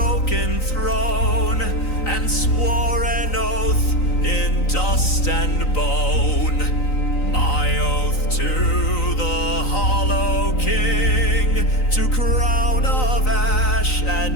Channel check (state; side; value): late; right; 3.9 ms